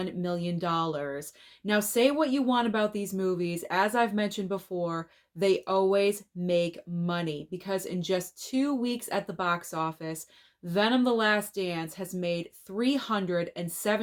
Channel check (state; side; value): identical; both; correlation 1.00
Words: million. Now, say what you want about these movies. As I've mentioned before, they always make money because in just 2 weeks at the box office, Venom: The Last Dance has made